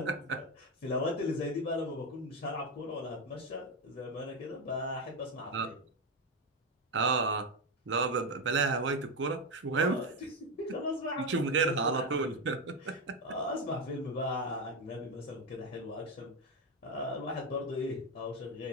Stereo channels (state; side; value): normal; both; correlation 0.10